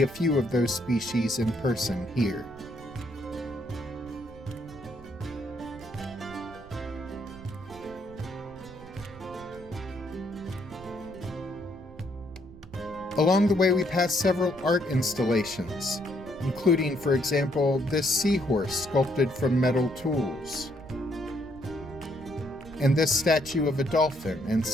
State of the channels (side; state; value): right; noise; rumble, 19 dB below the sound